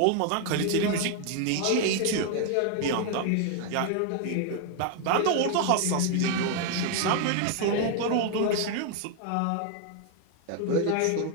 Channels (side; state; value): both; different; correlation 0.00